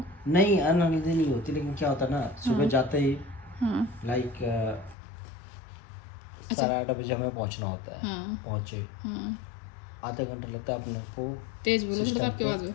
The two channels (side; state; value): right; drops out; at 5.0 s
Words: नहीं, अनहेल्दी नहीं होती, लेकिन क्या होता है ना, सुबह जाते ही हाँ लाइक अच्छा 8:30 बजे हमें पहुंचना होता है। हाँ पहुंचे हाँ, आधा घंटा लगता है अपने को, तेज बोलो थोड़ा सा, सिस्टम आपके पे आवाज में।